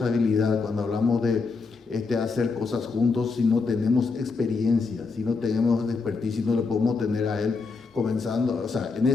cuando hablamos de hacer cosas juntos, si no tenemos experiencia, si no tenemos expertise, si no le podemos tener a él comenzando, o sea,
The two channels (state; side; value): quieter; right; 4.4 dB